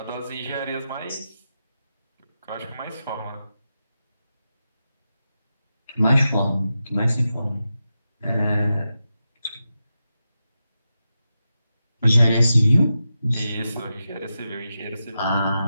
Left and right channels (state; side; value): inverted; both; correlation -0.90